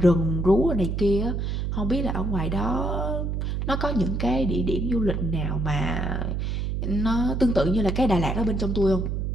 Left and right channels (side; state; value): right; noise; hum, 1 dB below the sound